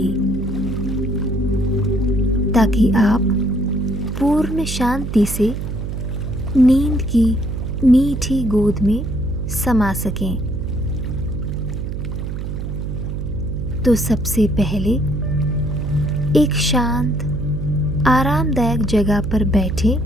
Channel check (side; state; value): right; noise; hum, 5 dB below the sound